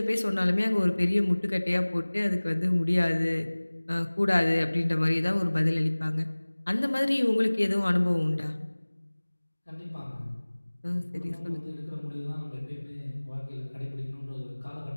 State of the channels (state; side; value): inverted; both; correlation -1.00